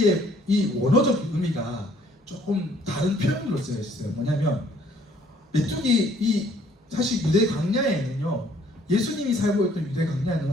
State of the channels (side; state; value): both; normal; correlation 0.61